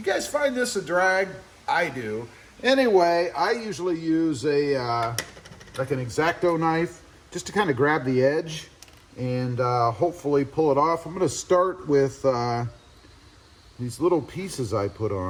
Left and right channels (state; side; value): identical; both; correlation 1.00